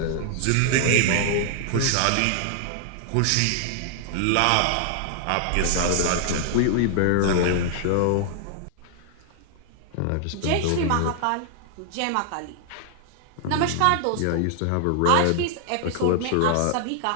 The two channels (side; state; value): both; different; correlation -0.01